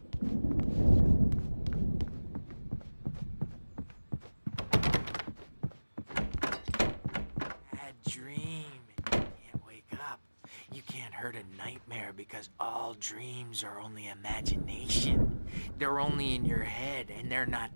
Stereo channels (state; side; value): inverted; both; correlation -1.00